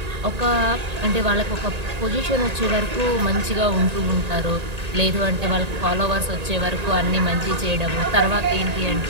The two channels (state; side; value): late; left; 1.9 ms